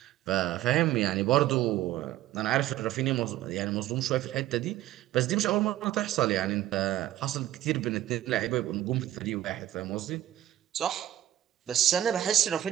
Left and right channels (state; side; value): quieter; left; 13.5 dB